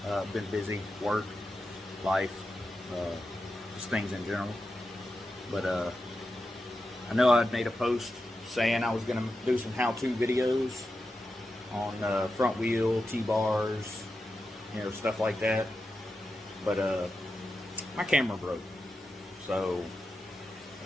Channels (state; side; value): normal; both; correlation 0.90